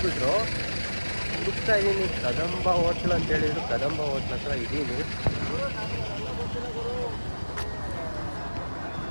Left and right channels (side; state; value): both; inverted; correlation -1.00